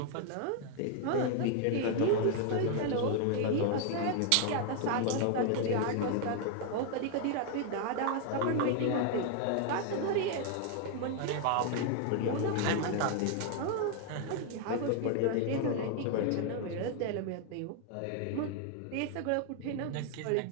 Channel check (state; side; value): different; both; correlation 0.00